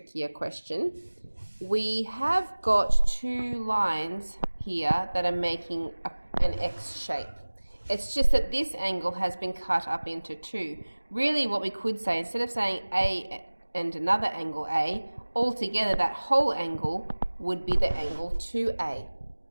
question. We have got two lines here that are making an X shape. It's just that this angle has been cut up into two. Really what we could say, instead of saying A and another angle A, altogether that whole angle would be the angle 2A.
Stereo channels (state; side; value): inverted; both; correlation -1.00